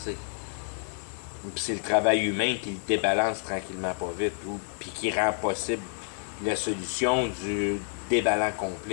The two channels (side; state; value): right; silent; 59 dB below the other